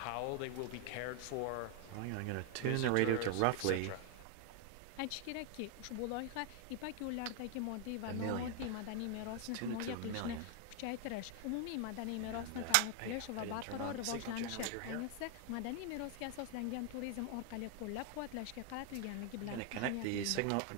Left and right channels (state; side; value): different; both; correlation 0.00